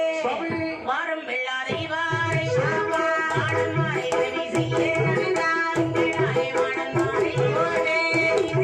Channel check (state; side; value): identical; both; correlation 1.00